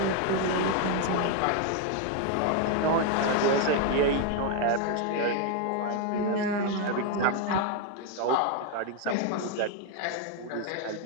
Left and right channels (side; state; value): both; different; correlation 0.01